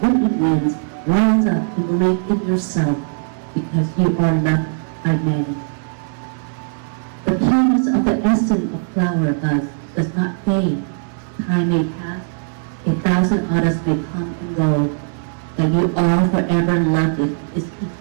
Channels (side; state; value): left; silent; digital silence